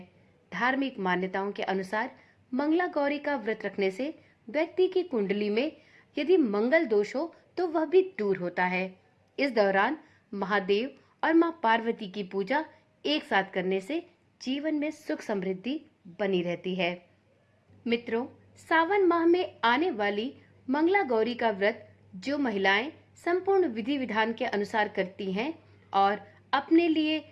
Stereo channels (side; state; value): both; identical; correlation 1.00